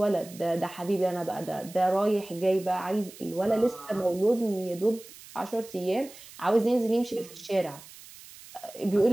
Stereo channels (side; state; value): right; noise; hiss, 18 dB below the sound